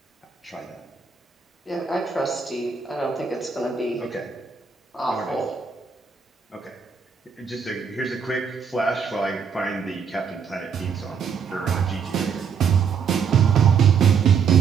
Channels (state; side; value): quieter; left; 6.4 dB